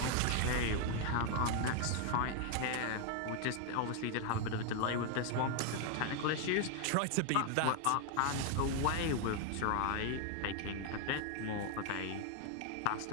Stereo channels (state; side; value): different; both; correlation 0.01